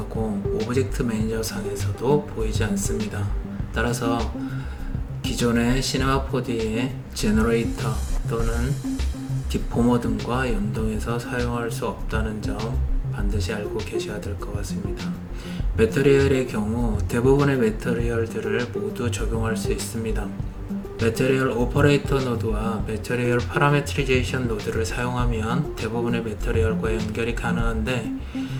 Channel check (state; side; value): identical; both; correlation 1.00